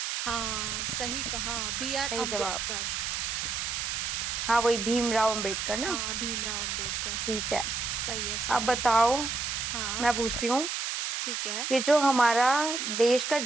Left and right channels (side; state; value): right; noise; hiss, 2 dB below the sound